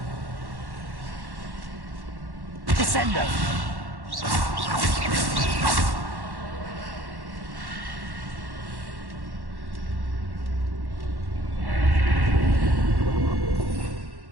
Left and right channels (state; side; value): late; left; 1.1 ms